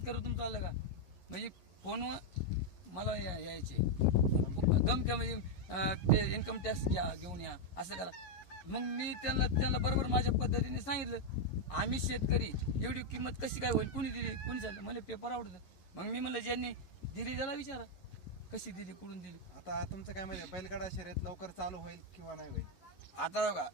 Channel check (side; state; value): right; late; 11 ms